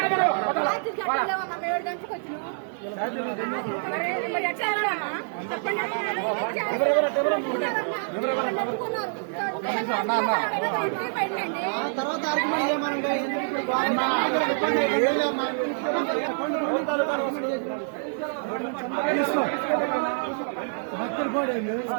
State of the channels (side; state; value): left; silent; 59 dB below the other